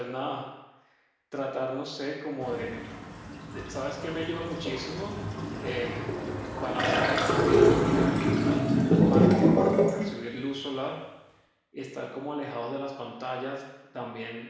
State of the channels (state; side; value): identical; both; correlation 1.00